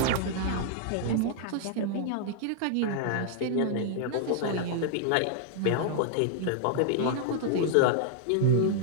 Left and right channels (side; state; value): both; different; correlation -0.01